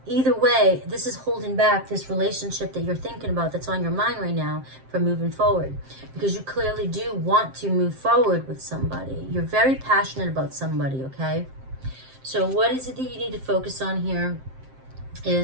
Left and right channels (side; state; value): left; late; 7.6 ms